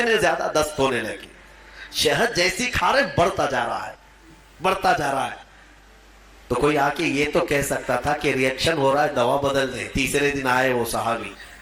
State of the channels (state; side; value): identical; both; correlation 1.00